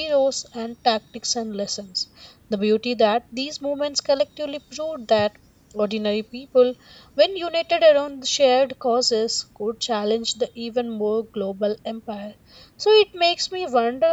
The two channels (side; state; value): both; identical; correlation 1.00